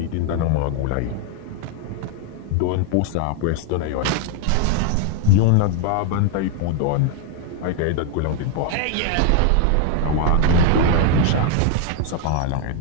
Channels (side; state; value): both; different; correlation 0.00